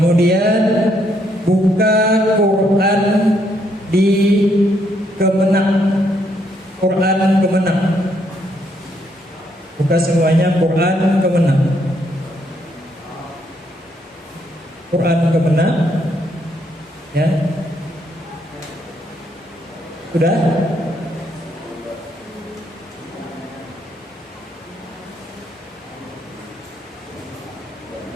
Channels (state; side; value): normal; both; correlation 0.73